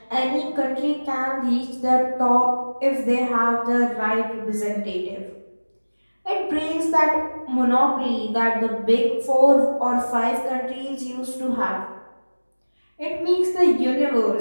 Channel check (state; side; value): inverted; both; correlation -1.00